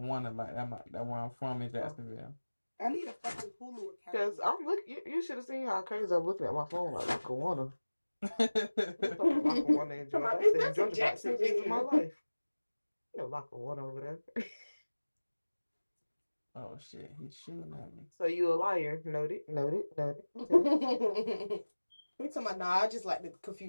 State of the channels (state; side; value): inverted; both; correlation -1.00